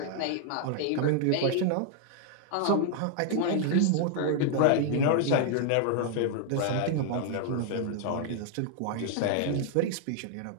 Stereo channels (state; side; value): different; both; correlation 0.00